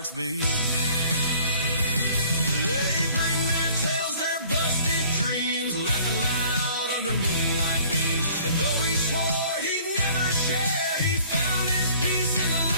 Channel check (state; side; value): inverted; both; correlation -0.53